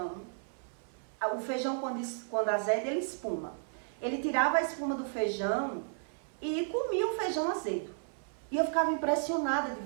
O feijão quando azeda, ele espuma. Ele tirava a espuma do feijão e comia o feijão azedo. E eu ficava impressionada de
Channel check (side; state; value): left; silent; 55 dB below the other